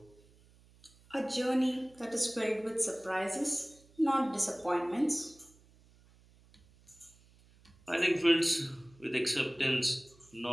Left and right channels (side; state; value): right; noise; hum, 28 dB below the sound